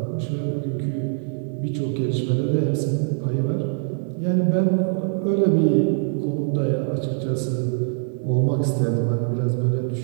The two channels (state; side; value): silent; left; 63 dB below the other